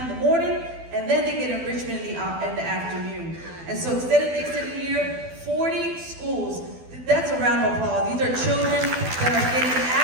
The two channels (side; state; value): left; late; 12 ms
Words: in the morning, and then they get enrichment in the afternoon. And so extended day, extended year, 40 schools. That's a round of applause. These are children that are getting